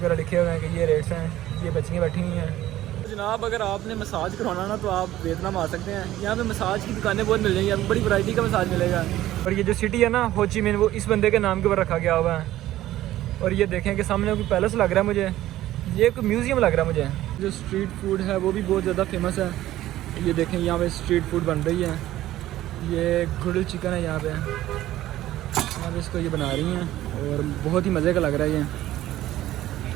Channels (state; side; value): quieter; left; 14.4 dB